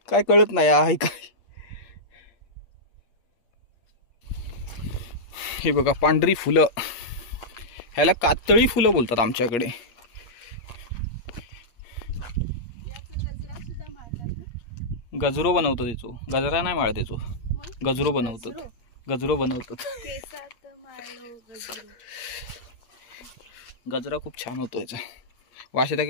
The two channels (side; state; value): right; late; 8.5 ms